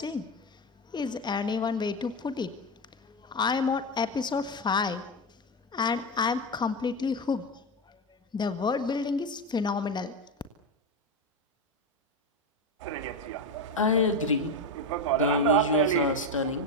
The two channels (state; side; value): normal; both; correlation 0.15